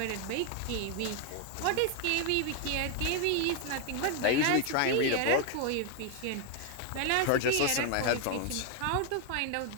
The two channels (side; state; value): both; different; correlation 0.01